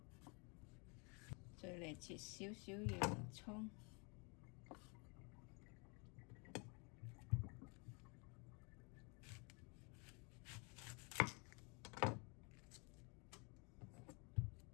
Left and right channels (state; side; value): quieter; right; 33.1 dB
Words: 再嚟切少少洋葱